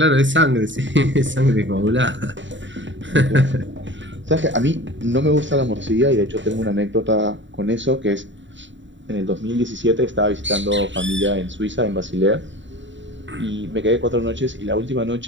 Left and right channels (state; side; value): late; left; 0.54 ms